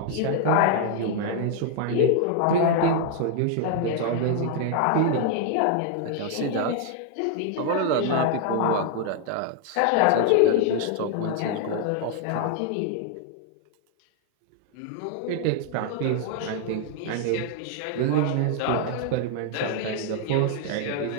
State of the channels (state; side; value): different; both; correlation 0.00